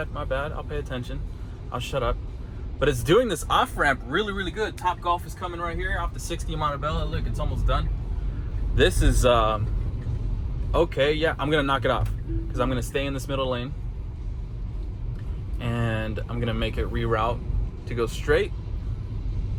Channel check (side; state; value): both; identical; correlation 1.00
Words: I'll pay attention, I'll shut up. But it's doing this off ramp really, really good. Top Golf is coming right here off the 60 Montebello. Look, it's almost done. This is okay. Yeah, I'm gonna knock it off because I'm gonna stay in this middle lane, and I'm gonna make it reroute to go straight.